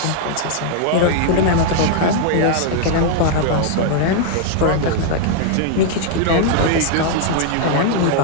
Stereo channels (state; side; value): different; both; correlation 0.00